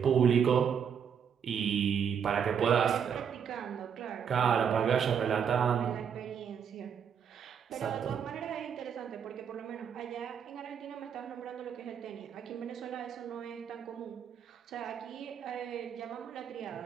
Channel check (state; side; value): quieter; left; 7.6 dB